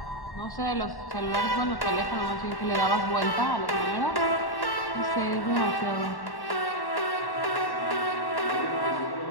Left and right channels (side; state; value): right; late; 1.1 ms